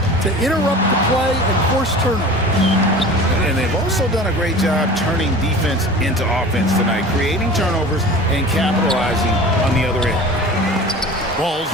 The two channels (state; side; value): normal; both; correlation 0.39